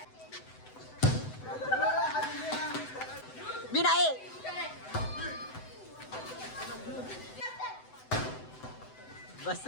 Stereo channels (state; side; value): late; right; 7.9 ms